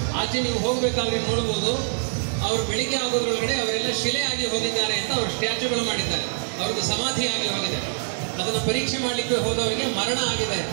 ಆಚೆ ನೀವು ಹೋಗ್ಬೇಕಾದ್ರೆ ನೋಡ್ಬೋದು. ಅವರು ಬೆಳಿಗ್ಗೆ ಆಗೋದ್ರೊಳಗಡೆ ಅವರೆಲ್ಲ ಶಿಲೆ ಆಗಿ ಹೋಗಿದ್ದಾರೆ ಅಂತ ಅವರು ಸ್ಟ್ಯಾಚ್ಯೂಗಳು ಮಾಡಿದ್ದಾರೆ. ಅವ್ರದ್ದು ಸಮಾಧಿ ಆಗಿ ಹೋಗಿದೆ. ಅದನ್ನು ಪರೀಕ್ಷೆ ಮಾಡಲಿಕ್ಕೆ ಹೋದವರಿಗೆ ಮರಣ ಆಗಿದೆ.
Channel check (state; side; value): silent; left; digital silence